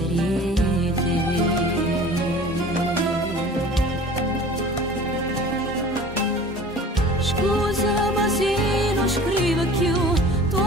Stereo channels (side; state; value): both; normal; correlation 0.44